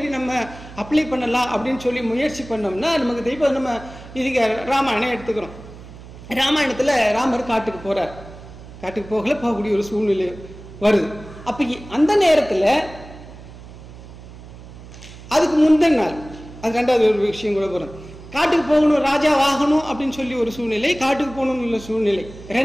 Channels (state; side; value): noise; right; hum, 17 dB below the sound